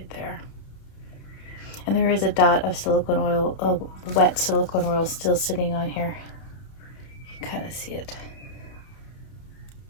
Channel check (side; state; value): right; late; 31 ms